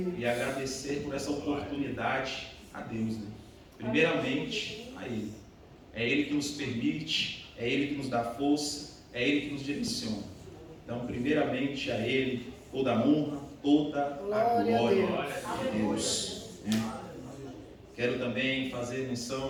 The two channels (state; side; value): identical; both; correlation 1.00